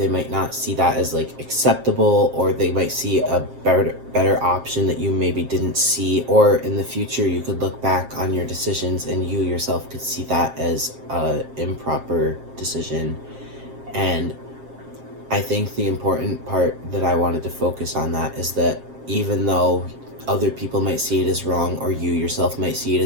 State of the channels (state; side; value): late; left; 7.5 ms